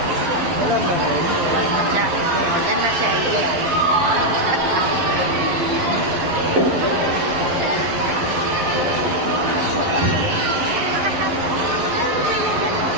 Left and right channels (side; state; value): left; late; 11 ms